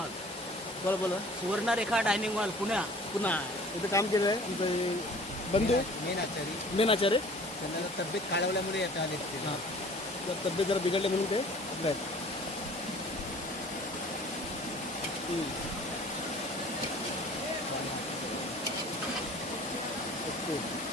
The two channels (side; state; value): both; normal; correlation 0.48